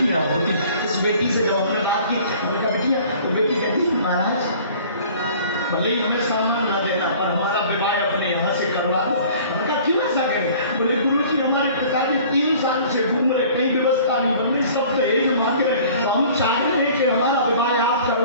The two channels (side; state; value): both; inverted; correlation -0.49